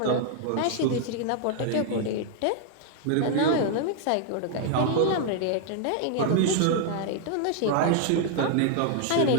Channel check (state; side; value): different; both; correlation 0.00